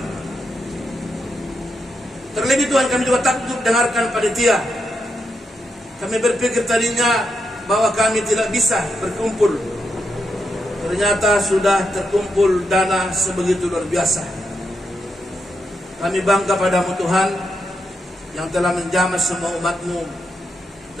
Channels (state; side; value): normal; both; correlation 0.83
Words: Terlebih Tuhan kami juga takjub dengarkan panitia. Kami berpikir tadinya bahwa kami tidak bisa berkumpul. Ternyata sudah terkumpul dana sebegitu luar biasa. Kami bangga padamu Tuhan yang telah menjamah semua umat-Mu